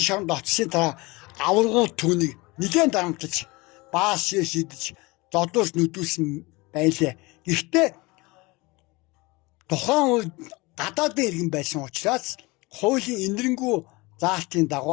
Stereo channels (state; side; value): quieter; right; 24.1 dB